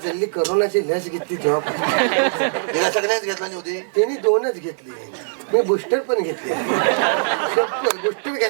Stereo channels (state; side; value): silent; left; digital silence